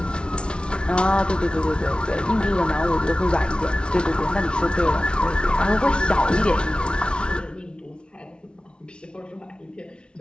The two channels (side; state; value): right; late; 0.057 ms